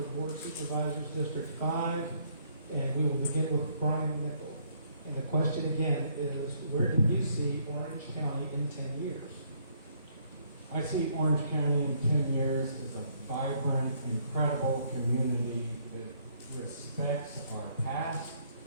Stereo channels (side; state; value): both; inverted; correlation -0.67